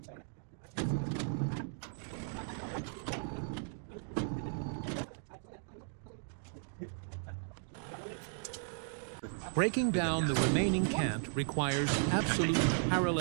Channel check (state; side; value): silent; left; digital silence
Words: Breaking down the remaining cant requires absolute